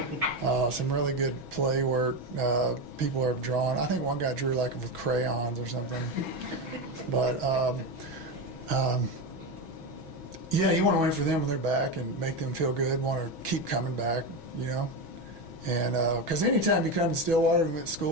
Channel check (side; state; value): left; late; 6.1 ms